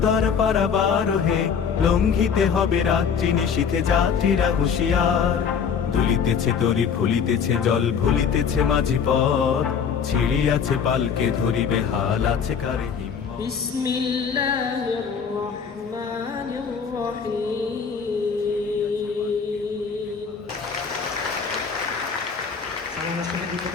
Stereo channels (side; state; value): right; quieter; 6.7 dB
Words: পারাবারোহে লঙ্ঘিতে হবে রাত্রি নিশীথে যাত্রীরা হুঁশিয়ার। দুলিতেছে তরি ফুলিতেছে জল ভুলিতেছে মাঝি পথ, ছিড়িয়াছে পালকে ধরিবে হাল আছে কারে হিম্মত। বিসমিল্লাহির রহমানির রহিম।